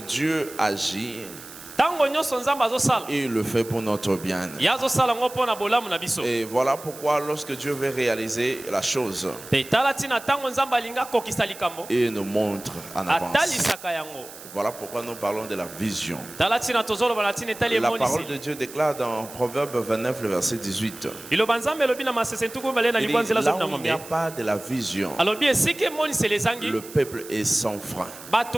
agit, il le fait pour notre bien. Et voilà pourquoi lorsque Dieu veut réaliser la chose, il nous montre en avance. Voilà pourquoi nous parlons de la vision. La parole de Dieu déclare dans Proverbe 29, le verset 18. Il dit, là où il n'y a pas de la vision, le peuple est sans frein.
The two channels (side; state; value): right; noise; hiss, 16 dB below the sound